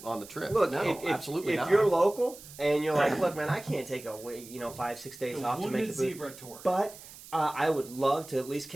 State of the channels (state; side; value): noise; right; hiss, 17 dB below the sound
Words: trip? Look, absolutely if not. you're local and you're like, look, man, I can't take 5-6 days off to make the Zebra tour. But I would love to at least